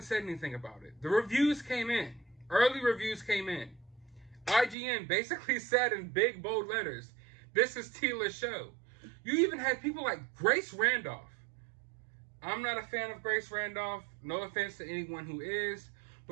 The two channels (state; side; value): drops out; left; at 4.8 s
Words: said anything about it. The reviews came in. Early reviews came in. IGN basically said in big, bold letters, this is Teela's show. You even had people like Grace Randolph. I'm not a fan of Grace Randolph. No offense to anyone who is.